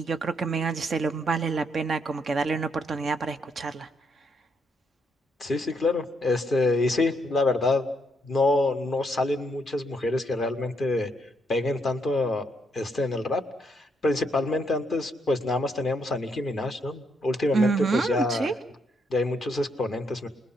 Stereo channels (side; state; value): both; normal; correlation 0.75